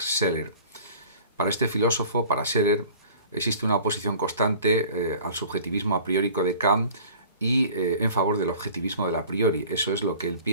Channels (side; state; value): both; inverted; correlation -0.45